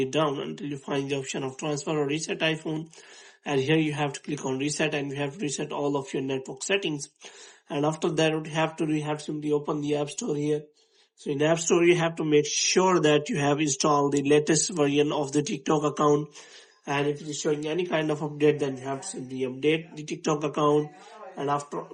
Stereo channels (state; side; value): identical; both; correlation 1.00